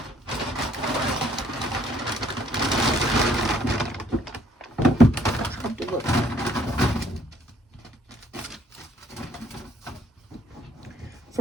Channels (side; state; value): both; normal; correlation 0.64